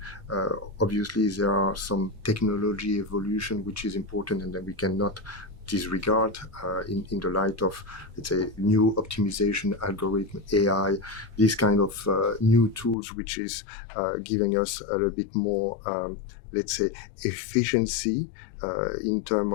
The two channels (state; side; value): drops out; right; at 13.0 s